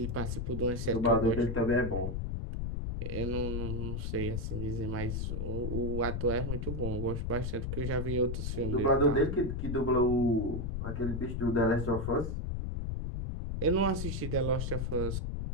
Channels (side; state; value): left; noise; rumble, 2 dB below the sound